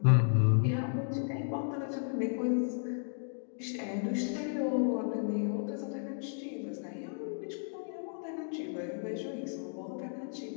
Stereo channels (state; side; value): silent; right; digital silence